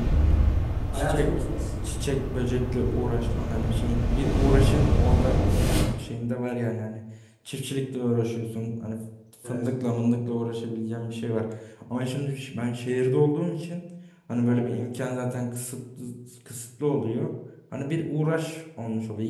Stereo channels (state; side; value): identical; both; correlation 1.00